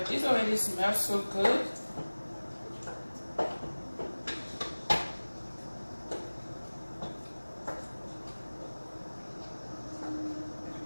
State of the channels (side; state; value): both; inverted; correlation -1.00